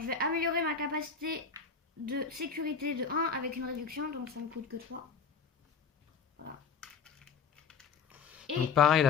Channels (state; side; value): quieter; right; 5.8 dB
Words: vais améliorer ma capacité de sécurité de 1 avec une réduction. Donc, ça me coûte que 3. Voilà. Et. Donc, pareil,